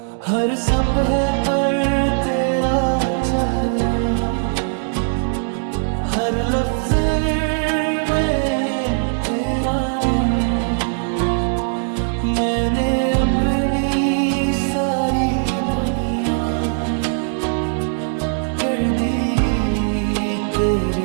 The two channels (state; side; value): silent; left; digital silence